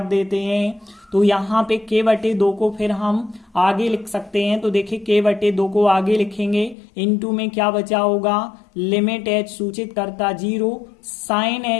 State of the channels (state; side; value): drops out; right; at 6.8 s